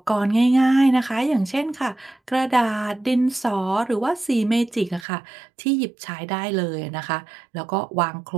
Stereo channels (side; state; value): left; drops out; at 5.1 s